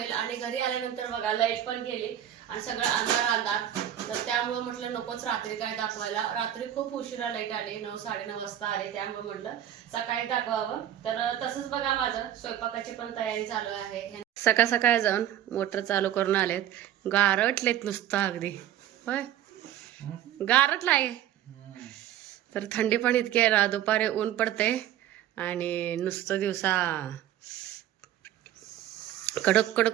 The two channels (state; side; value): quieter; left; 11.6 dB